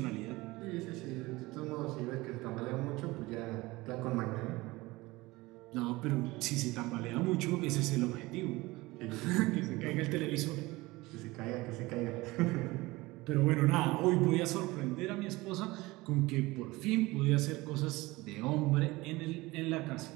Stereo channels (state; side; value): quieter; left; 20.9 dB